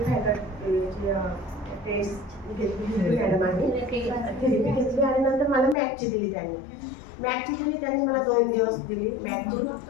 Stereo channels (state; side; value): drops out; right; at 5.8 s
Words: टेस्ट घेतली मॅडमांनी, थेरपी घेतली आणि नंतर मला मॅटची दिली त्यांनी. त्यांनी मला 2 दिवस दिली मॅटची.